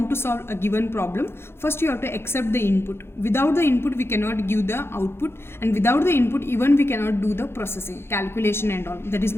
to solve a given problem, first you have to accept the input. Without the input, we cannot give the output, and without the input, even we cannot do the processing, calculation and all. That is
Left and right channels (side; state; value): right; late; 0.12 ms